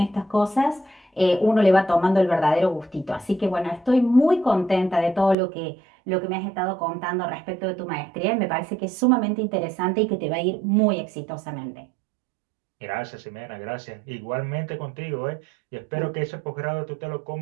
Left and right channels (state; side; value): drops out; left; at 5.4 s